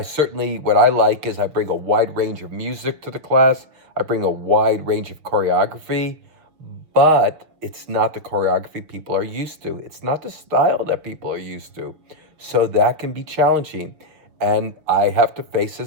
I like is I bring a wide range of music to the class, I bring a wide range of choreography, but it's not the choreography people are used to. It's not the style that people are used to. So that can be challenging. And I have to face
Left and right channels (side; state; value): left; late; 6.4 ms